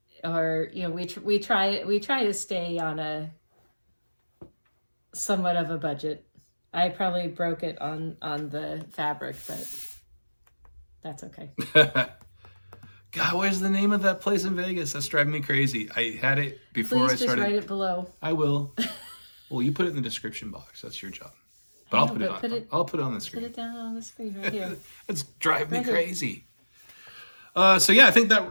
try to stay on a somewhat of a budget. I probably broke it on the fabric, but that's okay. God, where's the name of that place in Vegas? That's driving me crazy. I had it before I started. Please just write it below. I will. Well, you put it in the description box. That's your job. But I'll put it on the screen. Put it down on the screen right here. It's driving me crazy. So yeah, I think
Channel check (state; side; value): inverted; both; correlation -1.00